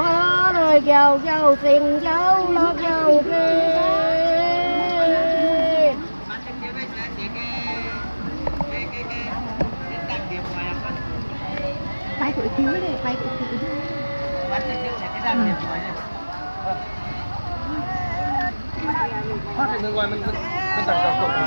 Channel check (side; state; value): both; inverted; correlation -1.00